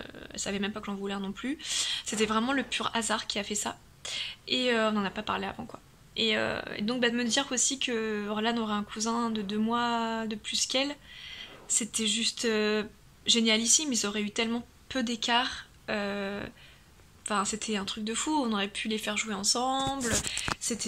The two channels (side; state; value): both; identical; correlation 1.00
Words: elle savait même pas que j'en voulais un non plus. C'était vraiment le pur hasard qui a fait ça. Et on n'en a pas parlé avant, quoi. Et donc de me dire aussi que Orlan aurait un cousin de 2 mois de plus qu'elle, c'était juste génialissime. Ils auraient eu tellement peu d'écart. Enfin, c'était un truc de fou. On aurait pu les faire jouer ensemble.